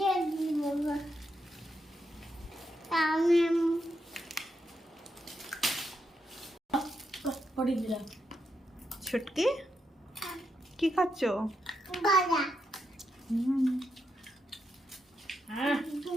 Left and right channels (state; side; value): normal; both; correlation 0.83